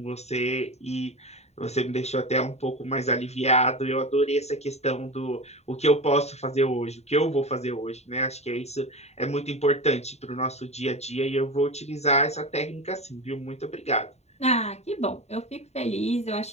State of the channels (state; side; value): late; right; 0.32 ms